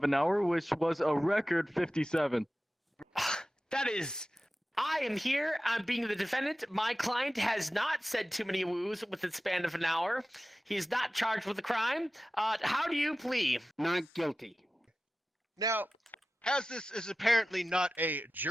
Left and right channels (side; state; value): both; normal; correlation 0.95